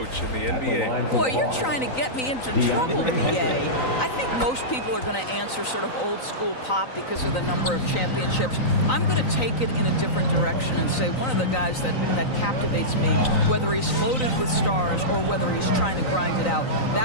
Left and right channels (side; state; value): right; late; 3.9 ms